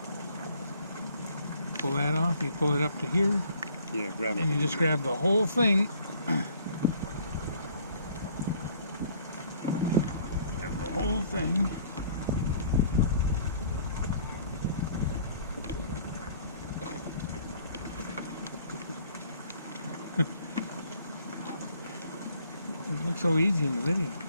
Pull that off, you pull it up to here. Yeah, grab it. And you just grab the whole thing. Grab the whole thing. It looks so easy in the video.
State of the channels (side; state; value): both; inverted; correlation -0.58